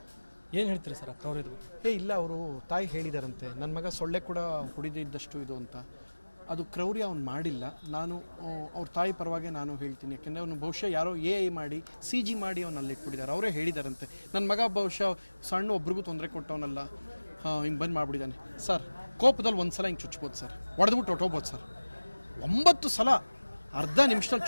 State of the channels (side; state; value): both; inverted; correlation -1.00